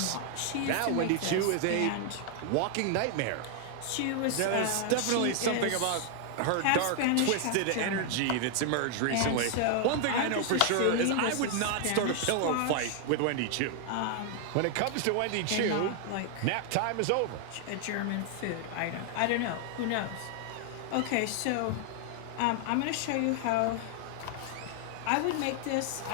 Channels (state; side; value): different; both; correlation 0.00